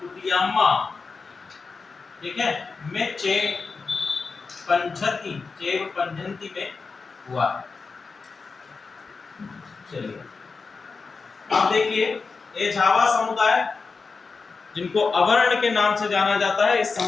ठीक है, में चेव पंझंती में हुआ। चलिए अब देखिए, ये झावा समुदाय, जिनको अवर्ण के नाम से जाना जाता है, इस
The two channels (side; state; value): right; quieter; 4.5 dB